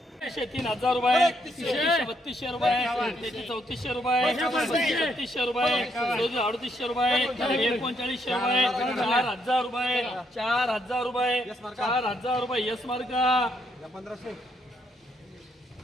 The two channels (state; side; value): normal; both; correlation 0.74